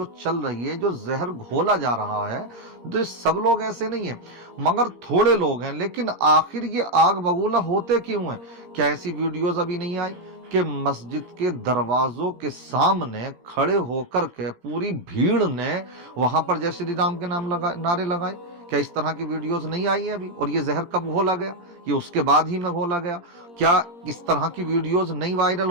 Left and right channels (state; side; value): late; left; 17 ms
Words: चल रही है, जो जहर घोला जा रहा है, तो ये सब लोग ऐसे नहीं हैं, मगर थोड़े लोग हैं। लेकिन आखिर ये आग बबूला होते क्यों हैं? क्या ऐसी वीडियोज अभी नहीं आई कि मस्जिद के दरवाजों के सामने खड़े होकर के पूरी भीड़ ने वहां पर जय श्री राम के नारे लगाए? क्या इस तरह की वीडियोस नहीं आई है अभी? और ये जहर कब घोला गया? ये उसके बाद ही में घोला गया। क्या इस तरह की वीडियोस नहीं वायरल